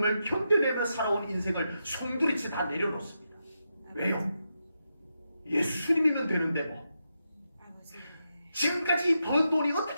견뎌내며 살아온 인생을 송두리째 다 내려놓습니다. 왜요? 예수님이면 되는데 뭐. 아버지. 지금까지 번 돈이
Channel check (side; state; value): both; inverted; correlation -0.86